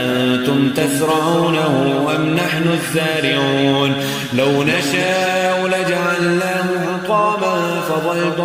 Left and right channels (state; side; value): identical; both; correlation 1.00